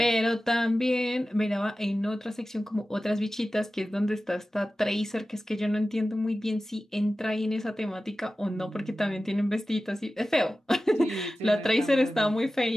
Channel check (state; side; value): normal; both; correlation 0.95